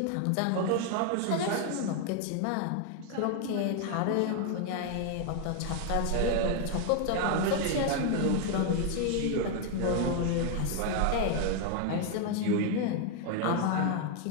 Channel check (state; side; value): different; both; correlation 0.01